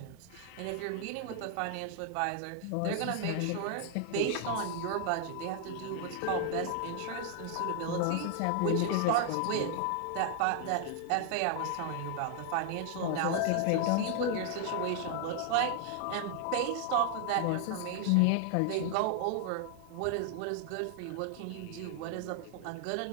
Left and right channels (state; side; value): different; both; correlation 0.00